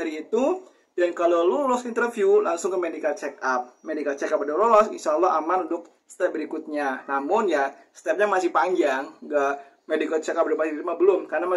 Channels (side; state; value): both; identical; correlation 1.00